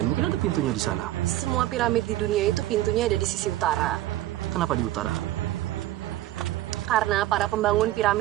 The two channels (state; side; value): quieter; left; 15.0 dB